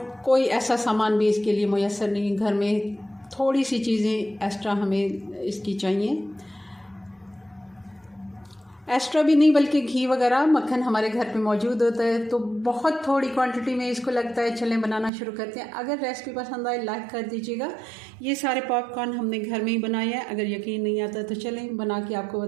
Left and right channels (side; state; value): left; drops out; at 15.1 s